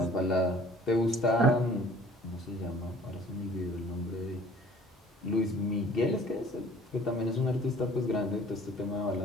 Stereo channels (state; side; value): normal; both; correlation 0.51